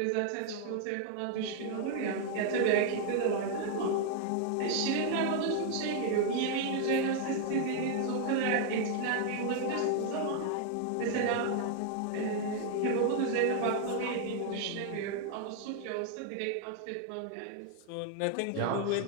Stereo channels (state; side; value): different; both; correlation 0.00